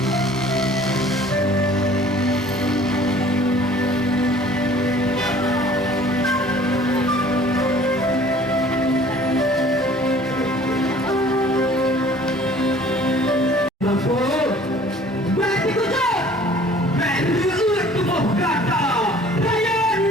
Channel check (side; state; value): both; normal; correlation 0.51